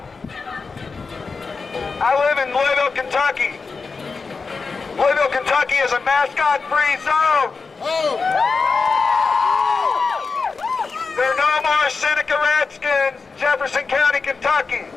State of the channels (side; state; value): right; quieter; 4.6 dB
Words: I live in Louisville, Kentucky. Louisville, Kentucky is a mascot-free zone. There are no more Seneca Redskins, Jefferson County, Kentucky.